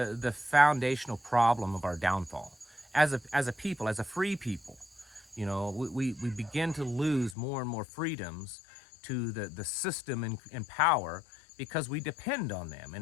foundational problem of our downfall. As a people, as a free people, we begin to lose more and more freedoms to the system and power because we depend on them.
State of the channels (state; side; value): drops out; right; at 7.4 s